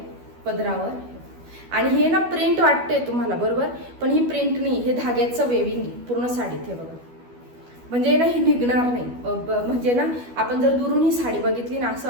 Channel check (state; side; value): late; left; 12 ms